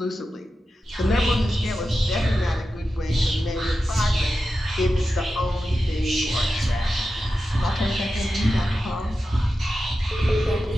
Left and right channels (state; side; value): normal; both; correlation 0.92